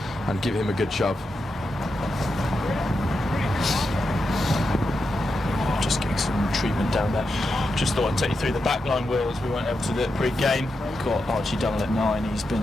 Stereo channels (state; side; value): normal; both; correlation 0.87